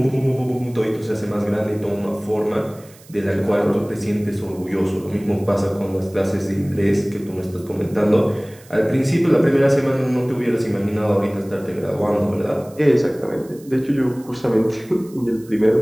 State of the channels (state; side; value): noise; right; hiss, 25 dB below the sound